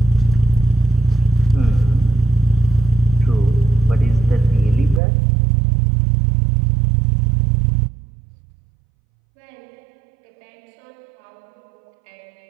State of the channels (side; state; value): left; drops out; at 5.0 s